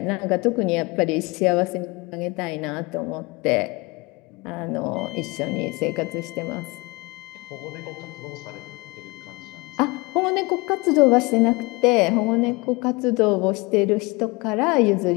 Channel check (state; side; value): quieter; right; 25.2 dB